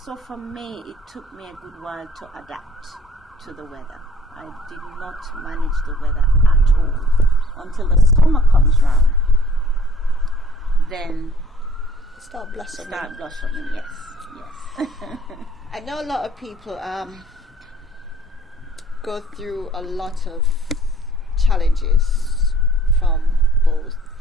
for me, it took me a good while to adapt to the weather. I did not manage the weather at all until the summer comes round. Then start blossoming. Yes. I know a lot of people go through a lot of challenges from both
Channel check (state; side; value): normal; both; correlation 0.56